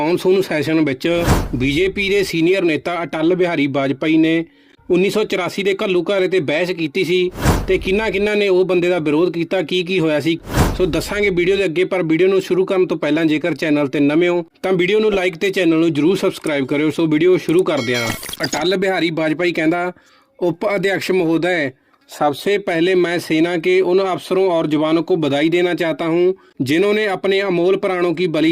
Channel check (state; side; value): identical; both; correlation 1.00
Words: ਸੈਸ਼ਨ ਵਿੱਚ ਬੀਜੇਪੀ ਦੇ ਸੀਨੀਅਰ ਨੇਤਾ ਅਟਲ ਬਿਹਾਰੀ ਵਾਜਪਾਈ ਨੇ 1984 ਦੇ ਘੱਲੂਘਾਰੇ ਤੇ ਬਹਿਸ ਕੀਤੀ ਸੀ ਤੇ ਕਿੰਨਾ ਨੇ ਉਹ ਬੰਦੇ ਦਾ ਵਿਰੋਧ ਕੀਤਾ, ਕੀ ਹੋਇਆ ਸੀ। ਸੋ ਦੱਸਾਂਗੇ ਵੀਡੀਓ ਦੇ ਅੱਗੇ, ਪਰ ਵੀਡੀਓ ਨੂੰ ਸ਼ੁਰੂ ਕਰਨ ਤੋਂ ਪਹਿਲਾਂ ਜੇਕਰ ਚੈਨਲ ਤੇ ਨਵੇਂ ਹੋ ਤਾਂ ਵੀਡੀਓ ਨੂੰ ਲਾਈਕ ਤੇ ਚੈਨਲ ਨੂੰ ਜਰੂਰ ਸਬਸਕ੍ਰਾइब करो। सो वीडियो शुरू करते हैं। अटल बिहारी वाजपेयी कहता, उप अध्यक्ष महोदय, सबसे पहले मैं सेना के उन अफसरों और जवानों को बधाई देना चाहता हूं जिन्होंने अपने अमोल प्राणों की